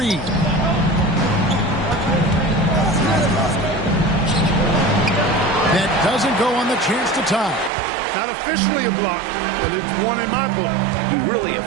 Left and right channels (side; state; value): left; drops out; at 7.7 s